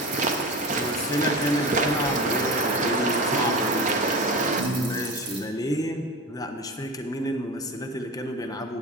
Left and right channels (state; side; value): normal; both; correlation 0.28